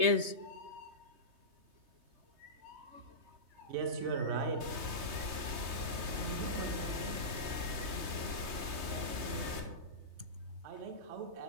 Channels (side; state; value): left; late; 3.2 ms